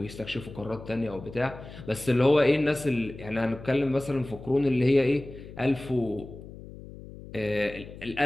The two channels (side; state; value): left; noise; hum, 15 dB below the sound